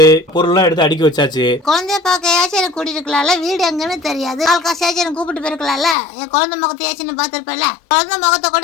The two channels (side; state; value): right; drops out; at 6.0 s